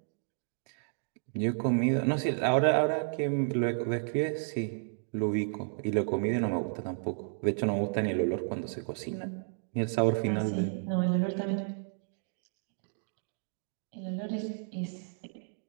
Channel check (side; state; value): left; silent; digital silence